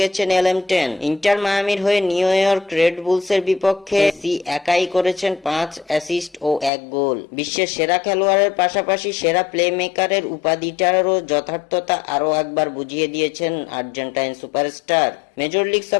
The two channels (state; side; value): drops out; right; at 6.7 s